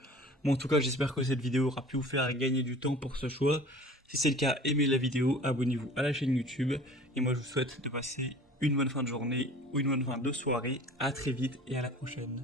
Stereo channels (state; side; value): normal; both; correlation 0.44